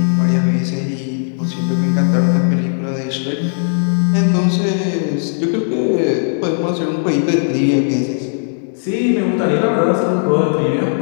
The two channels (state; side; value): silent; right; digital silence